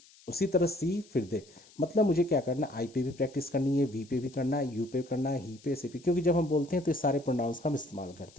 उसी तरह सी फिर दे. मतलब मुझे क्या करना? आई पे भी प्रैक्टिस करनी है, वी पे भी करना है, यू पे करना है, ही पे, सी पे, क्योंकि जब हम बोलते हैं तो ये सारे प्रोनाउंस का हम इस्तेमाल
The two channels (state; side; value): noise; left; hiss, 25 dB below the sound